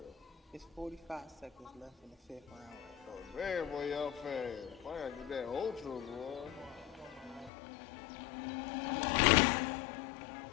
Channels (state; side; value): drops out; right; at 7.5 s